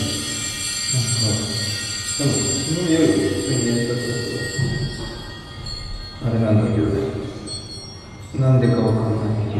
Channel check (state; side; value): identical; both; correlation 1.00